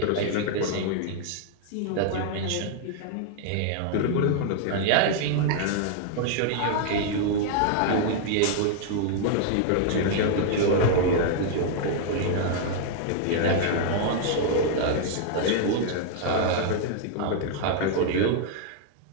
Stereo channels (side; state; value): both; different; correlation -0.01